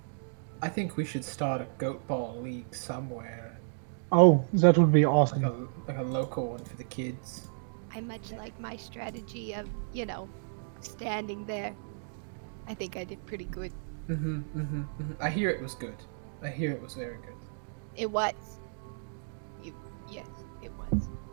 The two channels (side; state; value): left; silent; digital silence